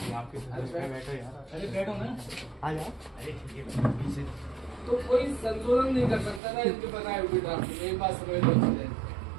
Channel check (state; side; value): drops out; left; at 6.4 s